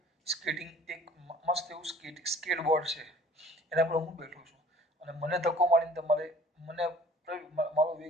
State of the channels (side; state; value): both; normal; correlation 0.50